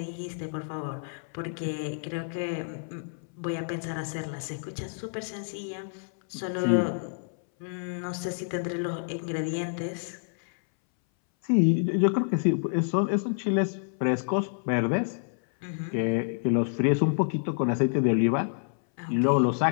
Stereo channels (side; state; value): right; silent; 59 dB below the other